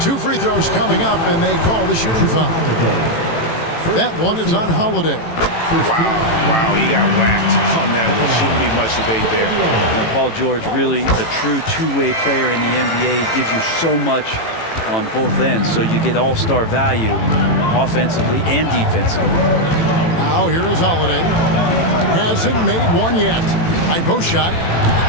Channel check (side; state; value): right; late; 18 ms